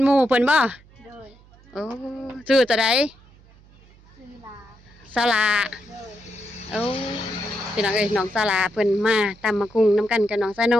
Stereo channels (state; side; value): noise; right; hum, 26 dB below the sound